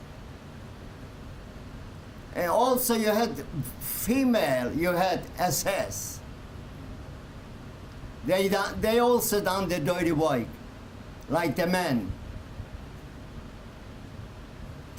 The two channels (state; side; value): identical; both; correlation 1.00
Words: And also you had female, you had SS. They also done the dirty work, like the men.